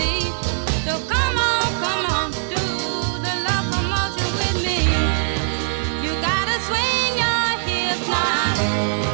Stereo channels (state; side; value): silent; left; digital silence